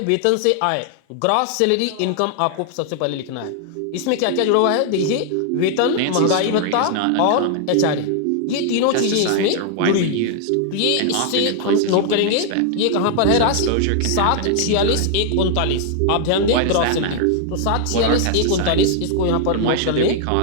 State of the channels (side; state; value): both; different; correlation 0.00